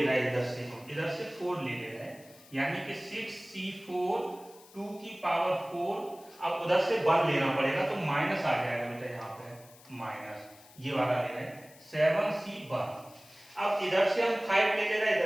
रहा है, इधर से 4 ले रहे हैं, यानी कि 6c4 2 की पावर 4। अब उधर से 1 लेना पड़ेगा तो माइनस आ जाएगा बेटा, यहाँ पे माइनस ये वाला ले रहे हैं 7c1। अब इधर से हम 5 ले रहे हैं,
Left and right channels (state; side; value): noise; left; hiss, 23 dB below the sound